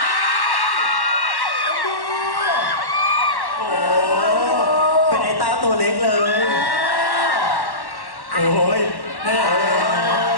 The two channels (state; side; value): late; right; 1.1 ms